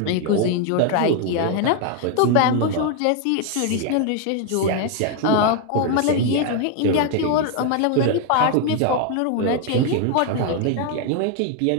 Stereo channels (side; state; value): both; different; correlation 0.01